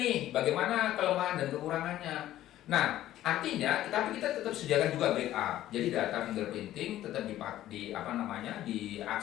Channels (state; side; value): quieter; right; 13.6 dB